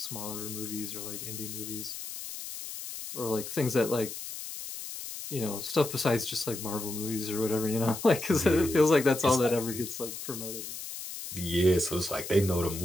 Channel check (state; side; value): noise; left; hiss, 9 dB below the sound